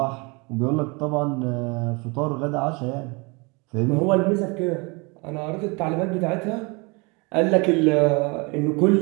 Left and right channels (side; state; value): left; quieter; 28.4 dB